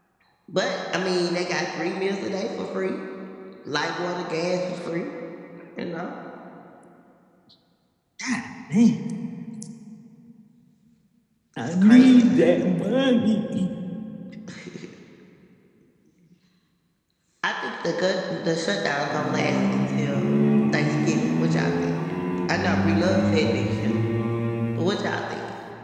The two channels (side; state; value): both; identical; correlation 1.00